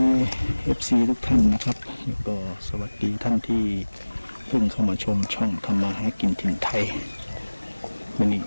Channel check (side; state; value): both; inverted; correlation -1.00